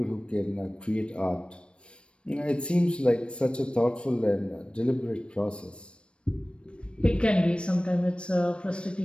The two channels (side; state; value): right; late; 0.058 ms